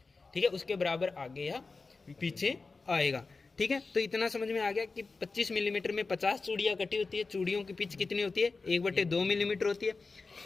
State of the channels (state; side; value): quieter; right; 4.1 dB